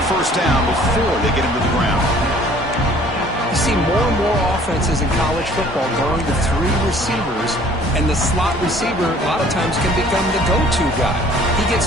first down before they get him to the ground. You see more and more offenses in college football going to three receivers, and the slot receiver a lot of times can become the go-to guy. He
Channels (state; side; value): normal; both; correlation 0.54